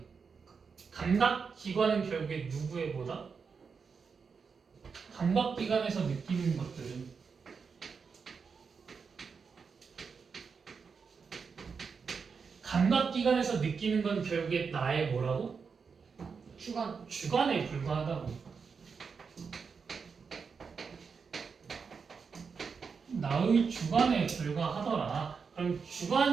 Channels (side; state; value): left; quieter; 5.6 dB